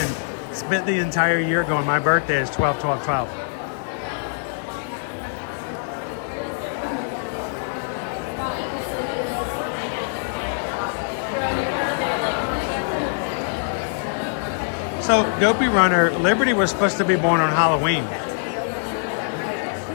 spent the entire year going, "My birthday is 12/12/12. So, Dopey Runner, Liberty was supposed to be born on Halloween.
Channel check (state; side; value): silent; right; digital silence